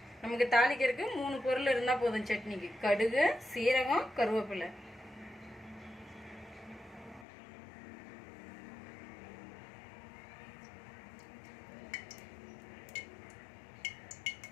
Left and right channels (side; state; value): right; drops out; at 7.2 s